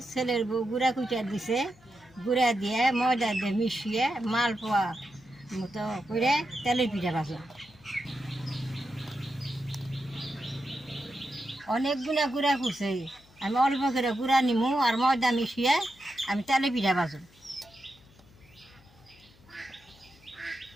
ছেলের বউ গুঁড়া কুইটা দিছে, গুঁড়া দিয়ে ময়দা দিয়ে মিশিয়ে মালপোয়া মতো করে তেলের পিঠা ভাজো। অনেক গুঁড়া করছে, আমি অল্প করে গুঁড়া নিমু আর ময়দা মিশিয়ে আমি তেলের পিঠা ভাজো।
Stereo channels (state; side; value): noise; left; hum, 27 dB below the sound